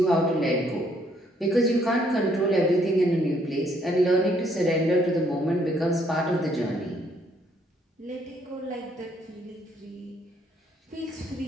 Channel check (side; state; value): both; normal; correlation 0.68